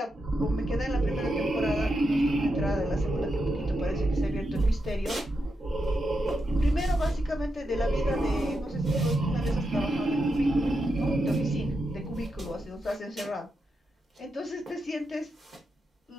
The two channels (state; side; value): normal; both; correlation 0.85